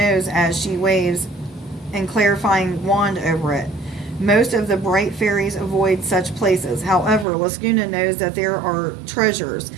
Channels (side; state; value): left; drops out; at 7.2 s